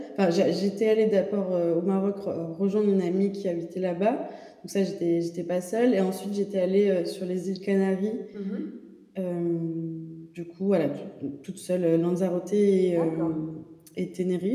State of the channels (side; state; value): both; identical; correlation 1.00